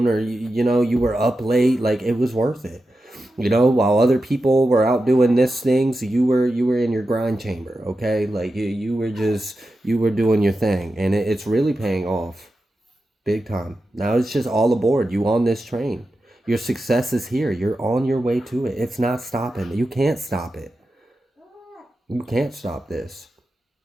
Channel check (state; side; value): normal; both; correlation 0.91